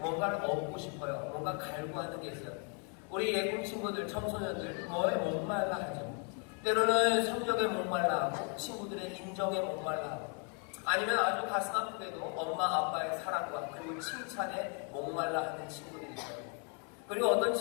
얻고 싶어요. 뭔가 갈구하는 게 있어요. 우리 예쁜 친구들, 청소년들 뭐에 목말라 하죠. 때로는 성적에 목말라 하고 친구들의 인정에 목말라 하고 아니면 아주 가슴 아프게도 엄마 아빠의 사랑과 그리고 칭찬에 목말라 하는 친구들이 있어요. 그리고 어떤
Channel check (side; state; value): right; quieter; 39.7 dB